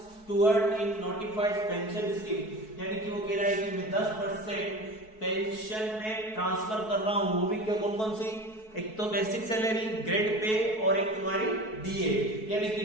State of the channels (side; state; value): right; late; 4.6 ms